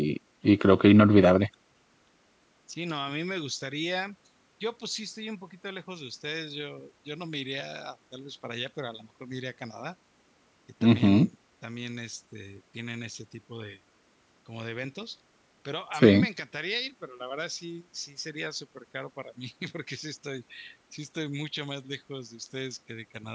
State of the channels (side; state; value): both; identical; correlation 1.00